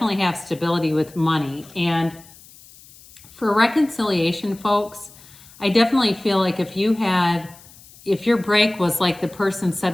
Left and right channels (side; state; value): left; noise; hiss, 23 dB below the sound